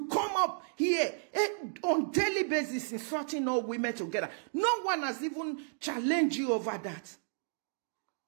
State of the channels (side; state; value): left; silent; digital silence